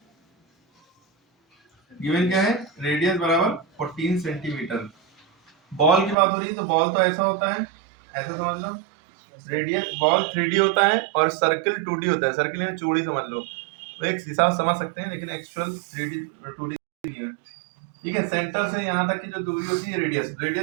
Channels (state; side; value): drops out; left; at 6.2 s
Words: है, रेडियस बराबर 14 सेंटीमीटर। बॉल की बात हो रही है, तो बॉल तो ऐसा होता है, ऐसा समझ लो, रेडियस बॉल 3D होता है और सर्कल 2D होता है। सर्कल में चौड़ी समझ लो, तो एक हिसाब समझ सकते हैं, लेकिन एक्चुअल 3D 2D नहीं है। ठीक है, सेंटर से यहाँ तक की जो दूरी होती है रेडियस